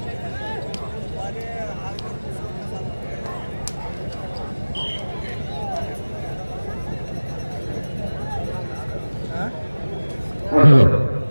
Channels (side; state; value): both; inverted; correlation -1.00